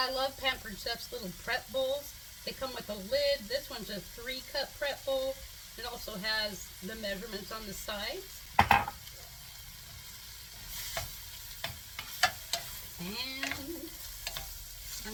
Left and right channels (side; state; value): both; identical; correlation 1.00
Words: love Pampered Chef's little prep bowls. They come with a lid. This one's a 3-cup prep bowl. It also has the measurements on the sides. And